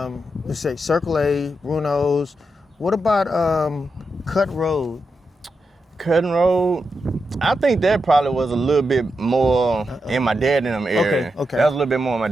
let's say Circle A, Bruno's. What about Cut Road? Cutting Road, I think that probably was a little bit more in my dad in them area. Okay. That was a little bit more in my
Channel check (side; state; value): both; normal; correlation 0.86